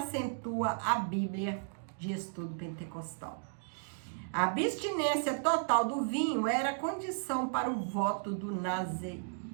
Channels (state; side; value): silent; left; digital silence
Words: a Bíblia de Estudo Pentecostal. A abstinência total do vinho era condição para o voto do